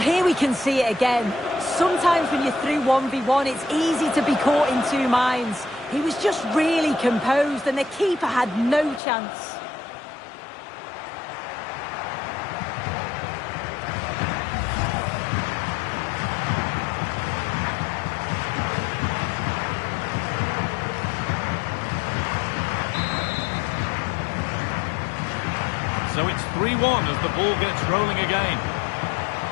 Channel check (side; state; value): right; drops out; at 9.0 s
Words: here we can see it again. Sometimes when you're through 1v1, it's easy to be caught in two minds. He was just really composed and the keeper had no chance. So it's 3-1 as the ball gets rolling again.